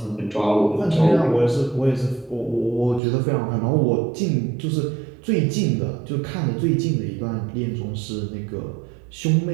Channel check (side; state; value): left; drops out; at 3.0 s